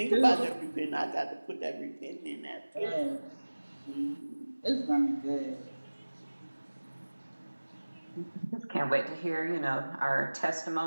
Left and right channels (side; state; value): both; inverted; correlation -1.00